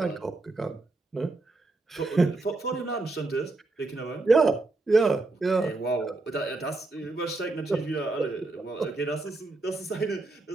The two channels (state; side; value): quieter; left; 3.3 dB